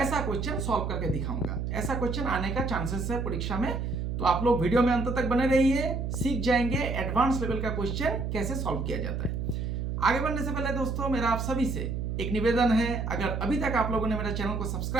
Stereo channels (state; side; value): noise; right; hum, 2 dB below the sound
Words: क्वेश्चन सॉल्व करके दिखाऊंगा। ऐसा क्वेश्चन आने का चांसेस है परीक्षा में, तो आप लोग वीडियो में अंत तक बने रहिए, सीख जाएंगे एडवांस लेवल का क्वेश्चन कैसे सॉल्व किया जाता है। आगे बढ़ने से पहले दोस्तों, मेरा आप सभी से एक निवेदन है, अगर अभी तक आप लोगों ने मेरा चैनल को